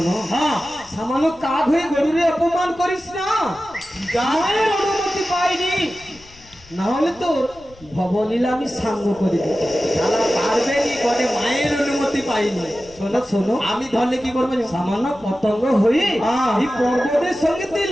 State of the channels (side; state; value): left; noise; rumble, 25 dB below the sound